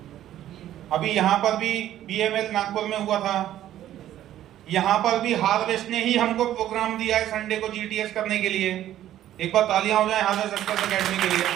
अभी यहां पर भी BML नागपुर में हुआ था, यहां पर भी हार्वेस्ट ने ही हमको प्रोग्राम दिया है संडे को GTS करने के लिए। एक बार तालियां हो जाए हार्वेस्ट सक्सेस एकेडमी के लिए।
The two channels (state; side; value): quieter; left; 12.4 dB